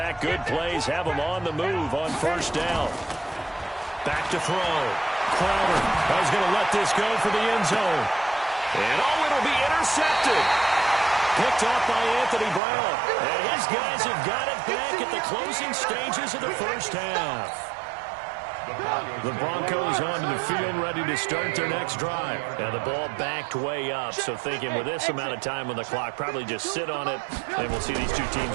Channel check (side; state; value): left; drops out; at 12.6 s